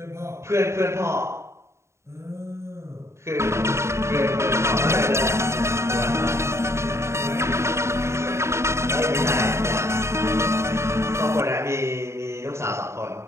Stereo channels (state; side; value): late; left; 0.13 ms